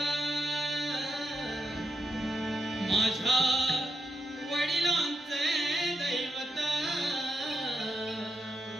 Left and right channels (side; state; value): both; normal; correlation 0.83